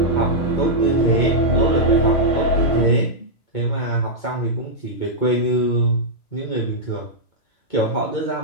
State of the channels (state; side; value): late; right; 2.2 ms